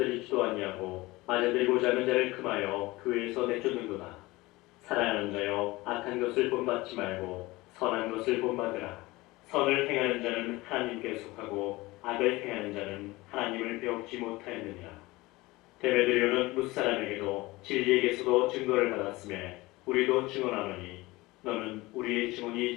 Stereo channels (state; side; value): quieter; right; 20.8 dB